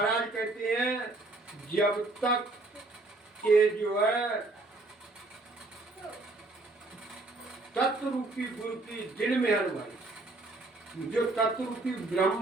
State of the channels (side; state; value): left; quieter; 3.0 dB